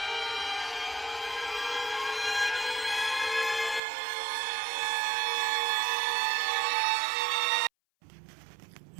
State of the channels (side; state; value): left; drops out; at 3.8 s